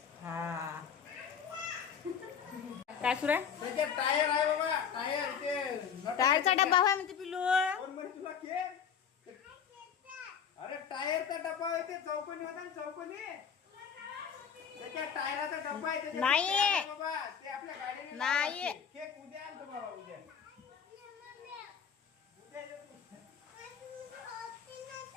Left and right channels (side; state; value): right; quieter; 7.3 dB